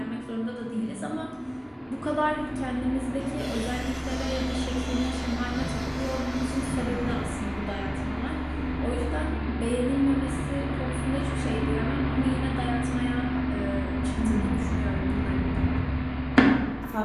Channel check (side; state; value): both; identical; correlation 1.00